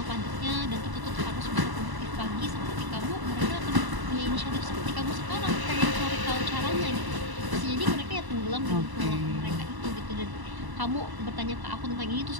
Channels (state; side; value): late; left; 1.0 ms